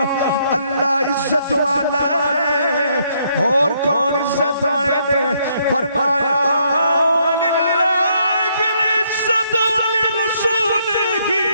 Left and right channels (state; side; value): inverted; both; correlation -0.71